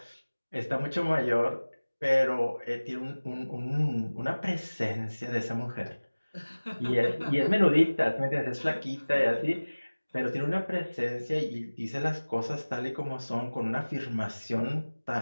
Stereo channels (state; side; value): inverted; both; correlation -1.00